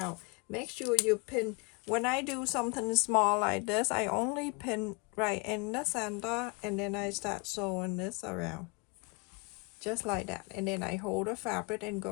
Make sure you pin. When I do something small like this, I only pin right in the center, and then I start sewing this around just like that, and then I hold the fabric and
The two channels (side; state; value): right; quieter; 30.7 dB